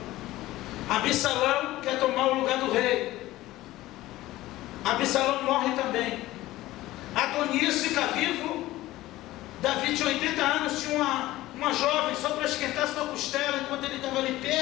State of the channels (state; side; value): quieter; right; 16.7 dB